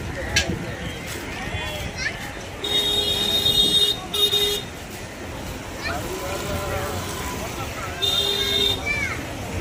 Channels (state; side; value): identical; both; correlation 1.00